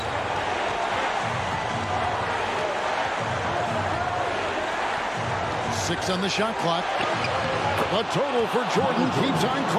Six on the shot clock. The total for Jordan keeps on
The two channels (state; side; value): identical; both; correlation 1.00